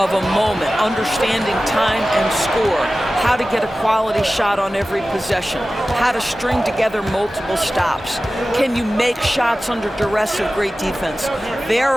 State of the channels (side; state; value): both; normal; correlation 0.95